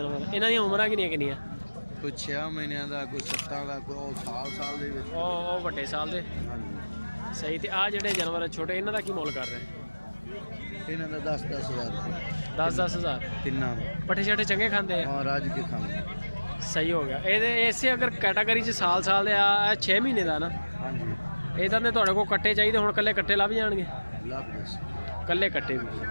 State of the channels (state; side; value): inverted; both; correlation -1.00